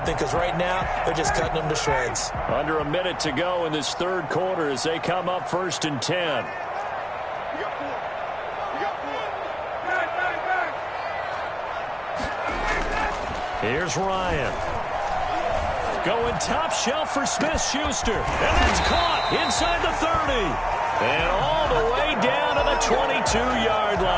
because right now they're just cutting them to shreds. Under a minute to go in this third quarter as they come up 1st and 10. Here's Ryan. Going top shelf for Smith-Schuster. And that's caught inside the 30. And all the way down to the 22-yard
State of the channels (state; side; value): identical; both; correlation 1.00